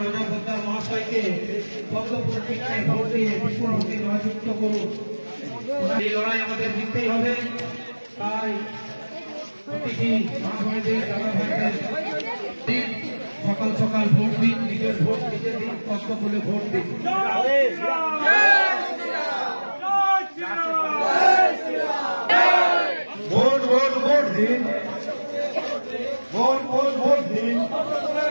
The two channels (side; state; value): both; inverted; correlation -1.00